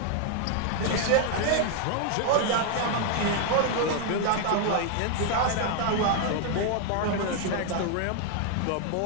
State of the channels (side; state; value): both; different; correlation 0.00